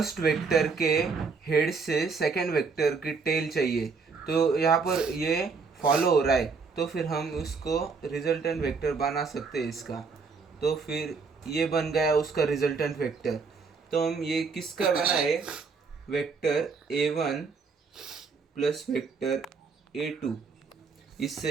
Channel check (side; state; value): left; quieter; 4.9 dB